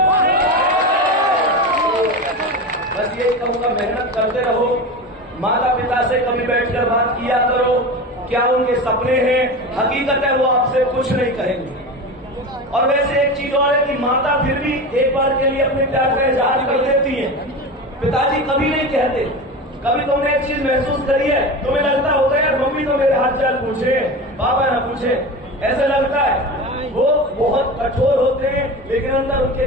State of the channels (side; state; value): both; normal; correlation 0.27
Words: बस यही कहूंगा, मेहनत करते रहो, माता पिता से कभी बैठकर बात किया करो, क्या उनके सपने हैं, हकीकत है वो आपसे कुछ नहीं कहेंगे। और वैसे एक चीज और है कि माता फिर भी एक बार के लिए अपने प्यार का इजहार कर देती है, पिताजी कभी नहीं कहते। कभी तुमने एक चीज महसूस करी है, तुम्हें लगता होगा यार मम्मी तो मेरे हाथ चाल पूछे, पापा ना पूछे, ऐसा लगता है। वो बहुत कठोर होते हैं, लेकिन अंदर उनके